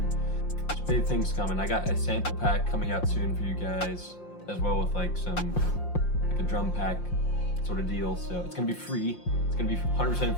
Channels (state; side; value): late; right; 5.7 ms